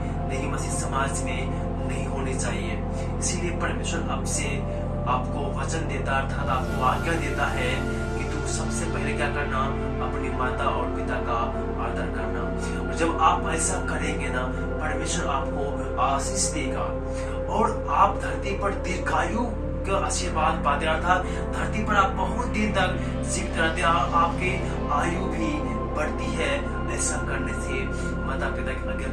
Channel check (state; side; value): identical; both; correlation 1.00